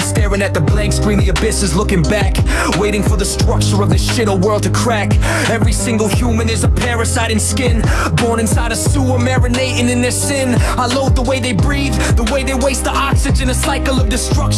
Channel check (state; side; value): identical; both; correlation 1.00